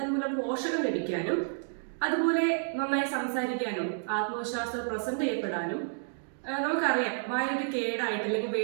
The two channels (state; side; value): silent; left; digital silence